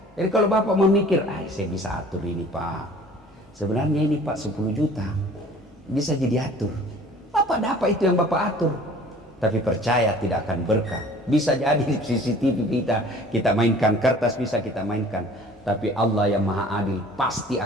Jadi kalau Bapak memikir, saya bisa atur ini Pak, sebenarnya ini Pak 10 juta bisa jadi atur, Bapak dapat itu yang Bapak atur. Tapi percaya tidak akan berkah. Bisa jadi di CCTV kita mainkan, kertas bisa kita mainkan, tapi Allah yang maha adil pasti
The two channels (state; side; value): normal; both; correlation 0.49